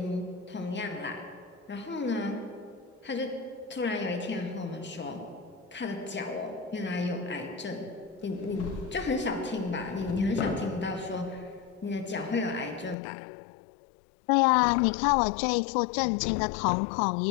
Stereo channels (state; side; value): drops out; right; at 13.0 s